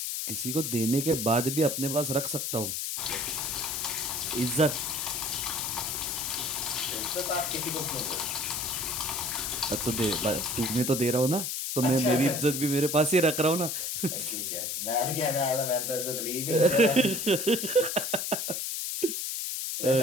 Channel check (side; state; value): left; noise; hiss, 2 dB below the sound